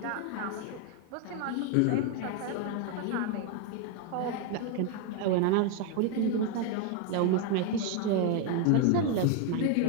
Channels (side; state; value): both; different; correlation 0.01